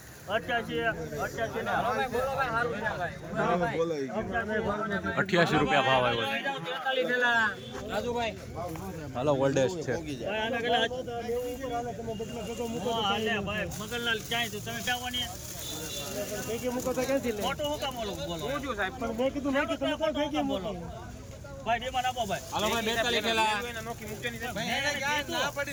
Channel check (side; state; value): both; identical; correlation 1.00